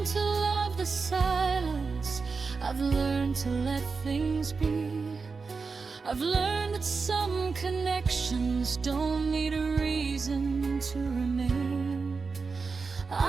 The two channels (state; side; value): quieter; left; 4.7 dB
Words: to love the silence, I've learned to let things be. I've learned that some connections don't need a reason to remain.